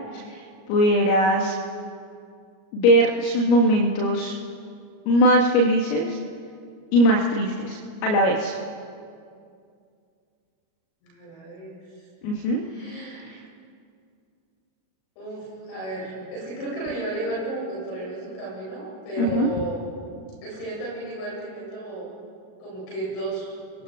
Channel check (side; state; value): right; late; 38 ms